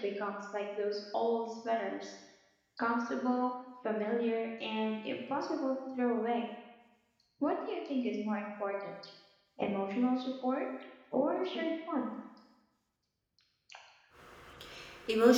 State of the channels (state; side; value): identical; both; correlation 1.00